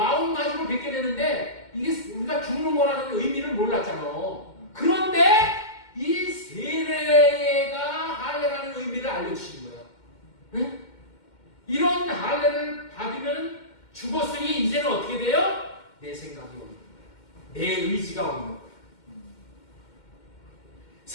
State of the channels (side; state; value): right; late; 2.1 ms